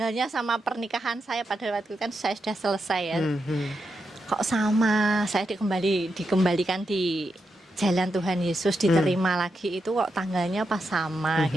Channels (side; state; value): both; normal; correlation 0.85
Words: sama pernikahan saya, pada waktu itu kan saya sudah selesai ya. Kok sama, saya dikembalikan di jalan Tuhan Yesus, diterima lagi, itu kok tanggalnya pas sama